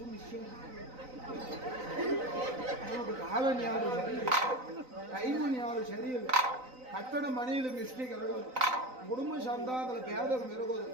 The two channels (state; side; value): late; left; 3.9 ms